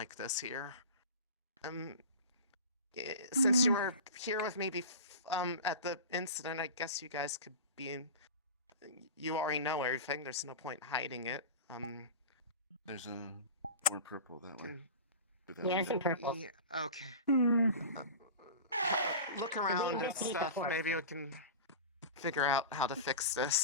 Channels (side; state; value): both; inverted; correlation -0.31